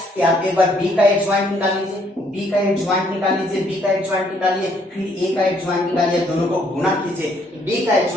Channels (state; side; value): normal; both; correlation 0.67